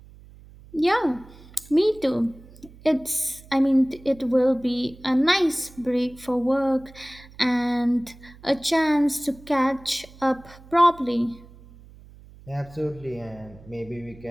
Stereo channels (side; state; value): right; noise; hum, 22 dB below the sound